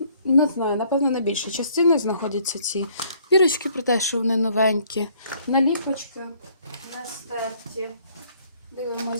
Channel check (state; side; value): inverted; both; correlation -0.62